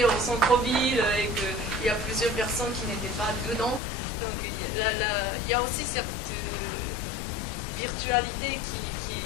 au centre-ville et qu'il y a plusieurs personnes qui n'étaient pas dedans. Donc il y a aussi cette virtualité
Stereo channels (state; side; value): drops out; right; at 3.8 s